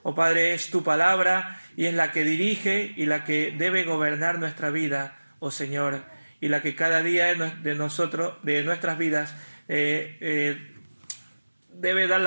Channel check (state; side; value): inverted; both; correlation -1.00